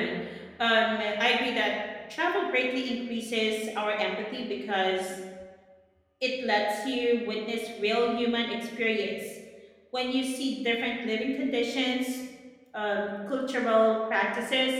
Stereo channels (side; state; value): both; identical; correlation 1.00